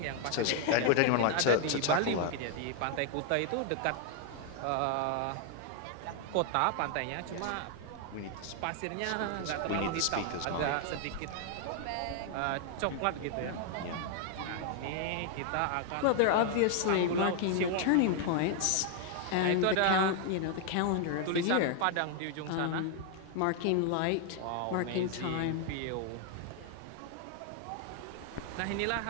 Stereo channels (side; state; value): both; different; correlation 0.00